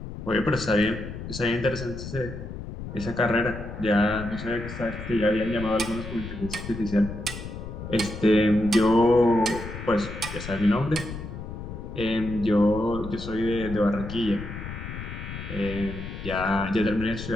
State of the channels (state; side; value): noise; left; rumble, 9 dB below the sound